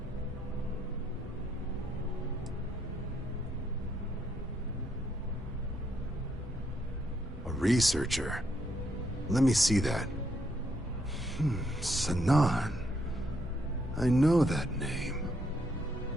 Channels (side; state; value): both; normal; correlation 0.75